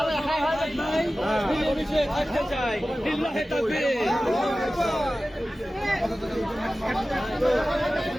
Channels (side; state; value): both; normal; correlation 0.96